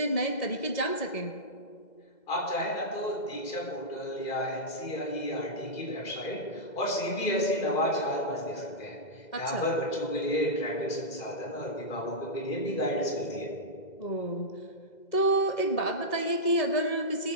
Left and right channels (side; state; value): right; late; 2.0 ms